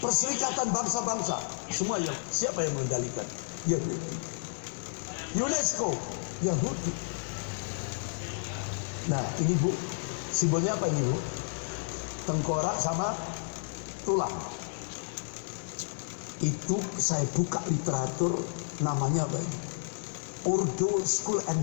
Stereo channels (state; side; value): silent; right; digital silence